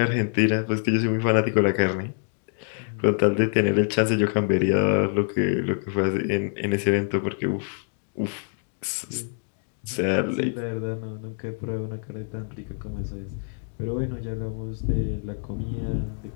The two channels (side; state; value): right; silent; 59 dB below the other